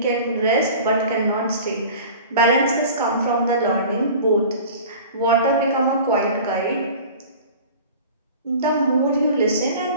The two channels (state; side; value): inverted; both; correlation -0.40